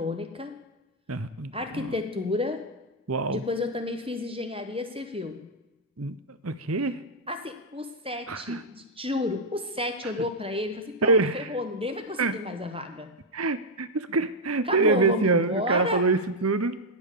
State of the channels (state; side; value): normal; both; correlation 0.00